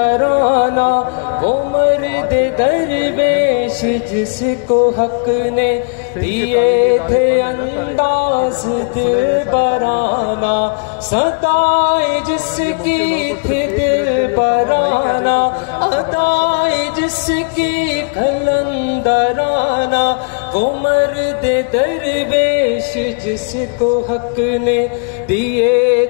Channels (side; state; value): right; quieter; 37.2 dB